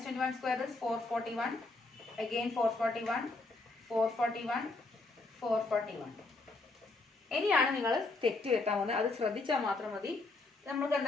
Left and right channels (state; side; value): quieter; right; 3.4 dB